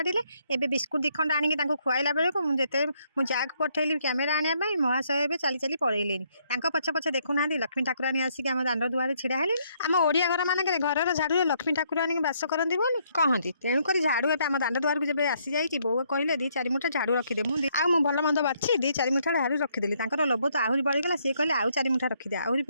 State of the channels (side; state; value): both; inverted; correlation -0.71